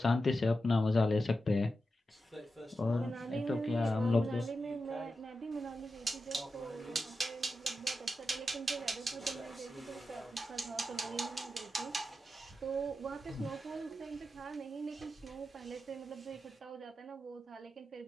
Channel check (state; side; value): normal; both; correlation 0.90